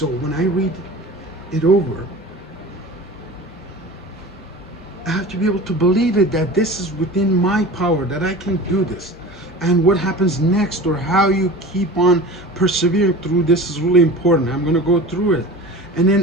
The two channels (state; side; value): normal; both; correlation 0.36